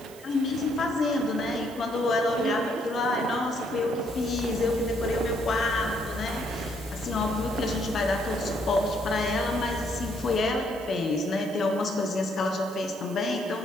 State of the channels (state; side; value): noise; right; hiss, 20 dB below the sound